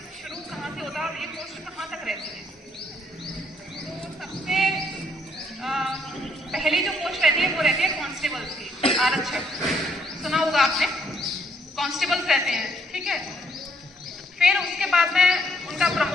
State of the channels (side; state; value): both; normal; correlation 0.70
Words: शुरू कहाँ से होता है और ये पोस्ट कहाँ तक रहती है। तो सबसे पहली जो पोस्ट रहती है वो रहती है कांस्टेबल्स की, आरक्षक। सुना होगा आपने, कांस्टेबल्स रहते हैं, ठीक है। फिर उसके बाद में उनका